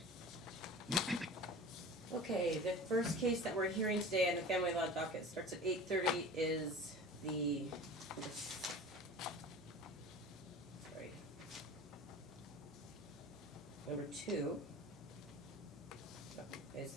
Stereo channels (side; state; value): both; normal; correlation 0.38